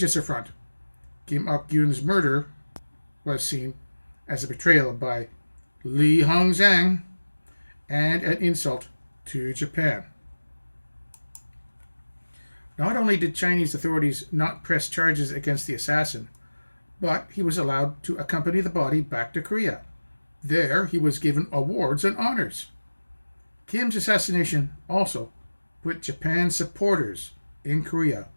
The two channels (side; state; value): both; inverted; correlation -1.00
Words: affront. Kim Il-sung's murder was seen as a betrayal by Li Hongzhang and an insult to Japan. Not only did Chinese authorities not press charges against the assassin, but he was allowed to accompany the body back to Korea. There, he was given awards and honors. Kim's assassination also put Japan's supporters in Korea